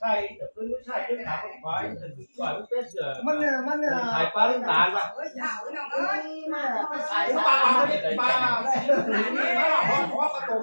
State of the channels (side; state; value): both; inverted; correlation -1.00